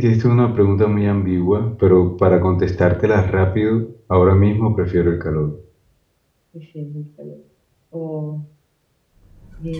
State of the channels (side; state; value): both; identical; correlation 1.00